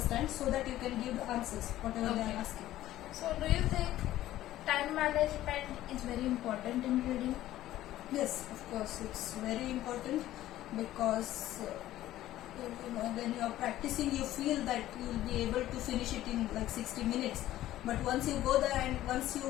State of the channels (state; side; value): quieter; right; 14.3 dB